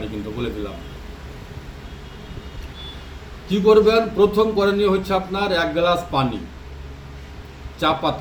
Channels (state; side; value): identical; both; correlation 1.00